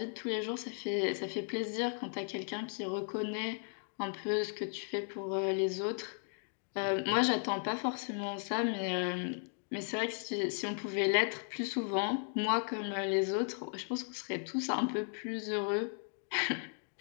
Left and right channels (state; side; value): silent; right; 54 dB below the other